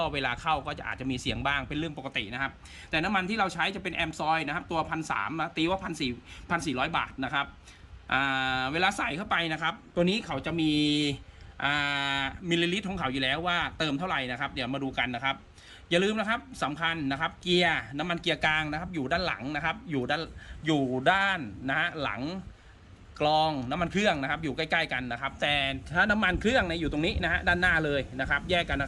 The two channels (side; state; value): both; identical; correlation 1.00